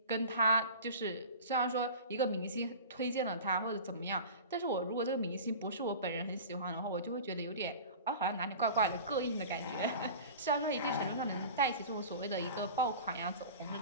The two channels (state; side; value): inverted; both; correlation -0.37